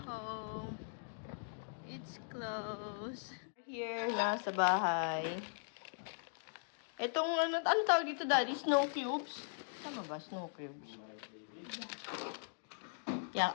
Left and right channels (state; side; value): silent; right; digital silence